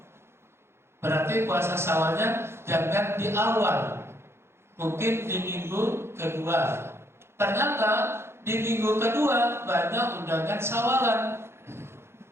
Berarti puasa Syawalnya jangan di awal, mungkin di minggu kedua. Ternyata di minggu kedua banyak undangan Syawalan.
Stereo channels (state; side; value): late; left; 0.12 ms